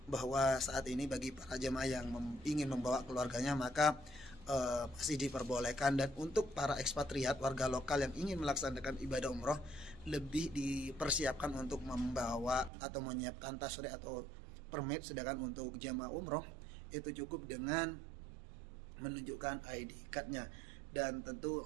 bahwa saat ini bagi para jemaah yang ingin membawa keluarganya maka masih diperbolehkan, dan untuk para ekspatriat warga lokal yang ingin melaksanakan ibadah umroh lebih dipersiapkan untuk membawa atau menyiapkan tasyri' atau permit. Sedangkan untuk jamaah umroh itu cukup dengan menunjukkan ID cardnya. Dan tentu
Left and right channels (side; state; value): left; drops out; at 12.7 s